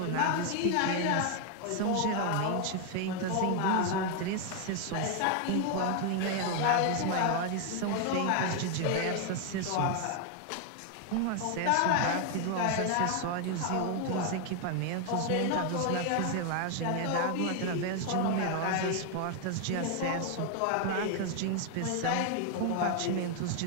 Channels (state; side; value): different; both; correlation 0.01